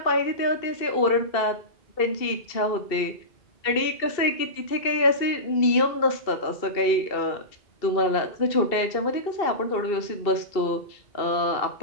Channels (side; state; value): right; late; 2.7 ms